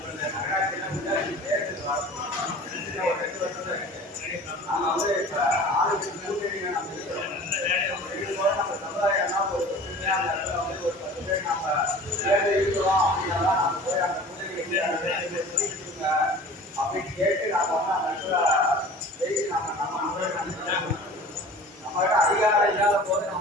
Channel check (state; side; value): normal; both; correlation 0.42